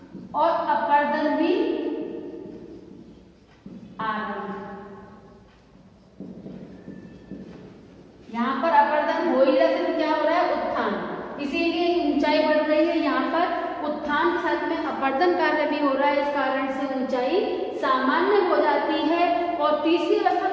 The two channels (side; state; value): both; identical; correlation 1.00